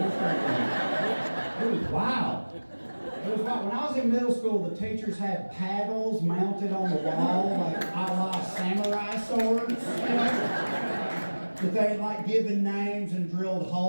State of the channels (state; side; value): inverted; both; correlation -1.00